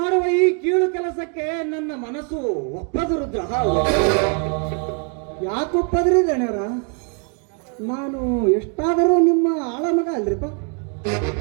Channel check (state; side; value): quieter; left; 38.8 dB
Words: ಈ ಕೀಳು ಕೆಲಸಕ್ಕೆ ನನ್ನ ಮನಸ್ಸು ಒಪ್ಪದು ರುದ್ರ. ಯಾಕೆ ಒಪ್ಪದ್ರಿ ಗಣ್ಯರ? ನಾನು ಎಷ್ಟಾದರೂ ನಿಮ್ಮ ಆಳ ಮಗ ಅಲ್ರಿಪ್ಪ.